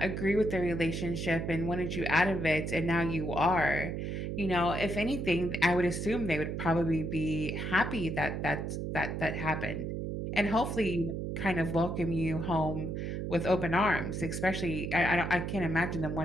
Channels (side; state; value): right; noise; hum, 3 dB below the sound